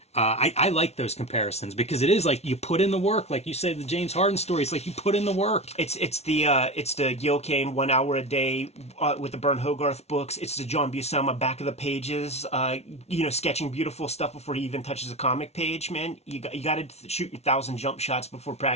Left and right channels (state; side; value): late; right; 0.31 ms